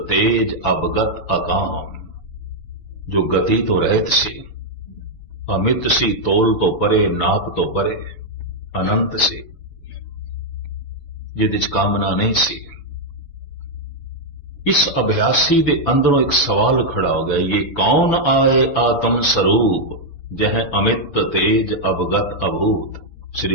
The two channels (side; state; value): right; late; 6.9 ms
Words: ਤੇਜ ਅਬਗਤ ਅਕਾਮ, ਜੋ ਗਤੀ ਤੋਂ ਰਹਿਤ ਸੀ, ਅਮਿਤ ਸੀ, ਤੋਲ ਤੋਂ ਪਰੇ, ਨਾਪ ਤੋਂ ਪਰੇ, ਅਨੰਤ ਸੀ, ਜਿਹਦੇ ਚ ਕਾਮਨਾ ਨਹੀਂ ਸੀ। ਇਸ ਅਭਿਆਸੀ ਦੇ ਅੰਦਰੋਂ ਇੱਕ ਸਵਾਲ ਖੜਾ ਹੋ ਗਿਆ, ਇਹ ਕੌਣ ਆਏ ਆਤਮ ਸਰੂਪ, ਜਹ ਅਮਿਤ ਤੇਜ ਅਵਗਤ ਅਭੂਤ।